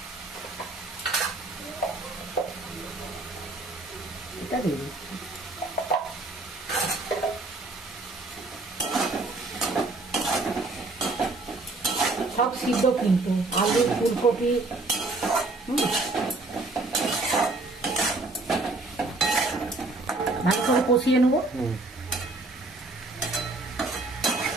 এটা দিয়ে দিচ্ছি। সব সিদ্ধ কিন্তু, আলু ফুলকপি, ভালো করে কষিয়ে নেবো।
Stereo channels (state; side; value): quieter; left; 3.2 dB